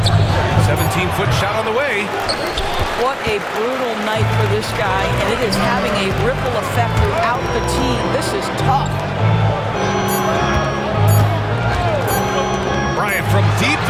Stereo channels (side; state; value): both; identical; correlation 1.00